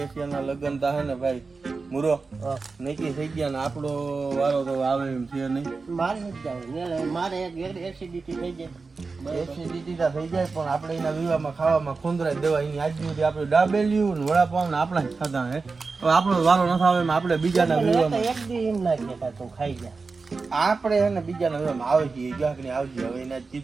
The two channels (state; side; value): quieter; left; 4.3 dB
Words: લગ્ન તા હે ને ભાઈ મુરો નક્કી થઈ ગયા ને આપણો વારો તો આવે એમ છે નહીં. મારે નથી જાવ, મારે એસિડિટી થઈ જાય. એસિડિટી તા થઈ જાય પણ આપણે એના વિવાહમાં ખાવામાં ખોંદરાઈ દેવા. એની આજ સુધી આપણે ડાબેલ્યું ને વડાપાવ ને આપણા જ ખાધા હે. હવે આપણો વારો ન આવે એમ આપણે બીજાના વિવાહમાં એક દી એમ ના કહેતા તું ખાઈ જા. આપણે હે ને બીજાના વિવાહમાં આવે છે ગાંકની આવજે. હવે એને